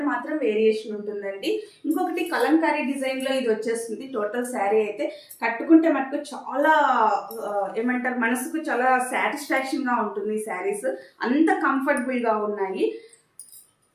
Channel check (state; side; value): identical; both; correlation 1.00